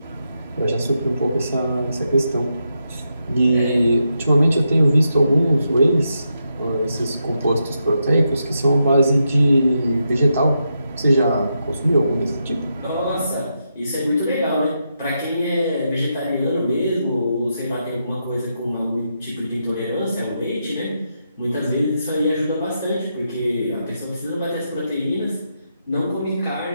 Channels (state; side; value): inverted; both; correlation -0.83